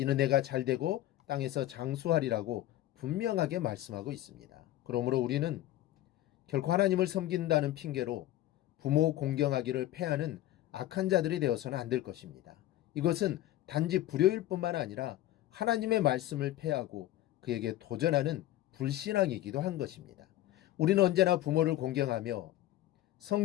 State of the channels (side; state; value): right; quieter; 14.4 dB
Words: 내가 잘되고 땅에서 장수하리라고 분명하게 말씀하고 있습니다. 그러므로 우리는 결코 하나님을 섬긴다는 핑계로 부모 공경하기를 패하는 악한 자들이 되어서는 안 될 것입니다. 이것은 단지 불효일 뿐만 아니라 하나님의 말씀을 패하고 그에게 도전하는 불신앙이기도 한 것입니다. 우리는 언제나 부모를 공경하며